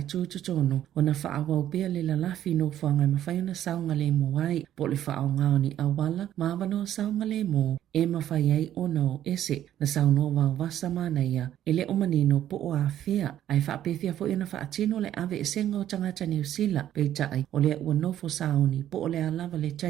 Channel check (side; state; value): left; quieter; 11.6 dB